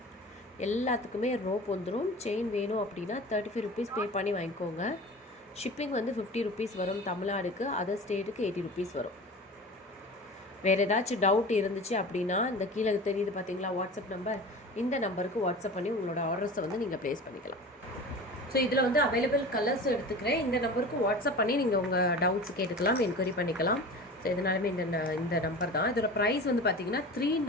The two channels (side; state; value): both; normal; correlation 0.36